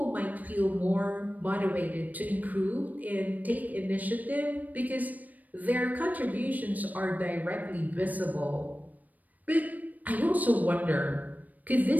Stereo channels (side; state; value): left; late; 0.080 ms